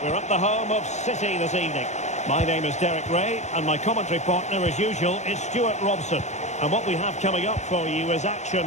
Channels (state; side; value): late; right; 0.33 ms